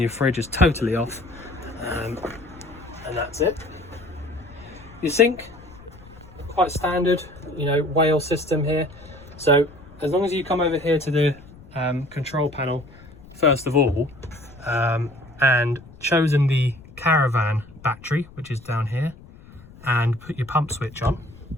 your fridge is totally off, and that's it. Your sink, quite standard, you know, whale system here. So as long as you come over here to the control panel first of all, and chosen the caravan battery, which is down here, and put your pump switch on.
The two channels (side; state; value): left; noise; rumble, 21 dB below the sound